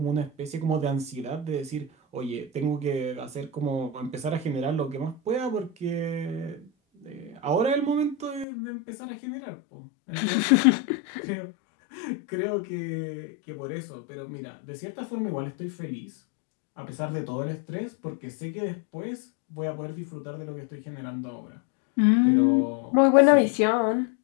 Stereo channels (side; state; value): right; drops out; at 8.5 s